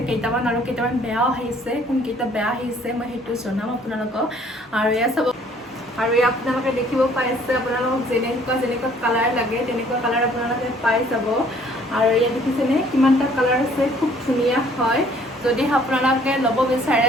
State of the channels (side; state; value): both; normal; correlation 0.59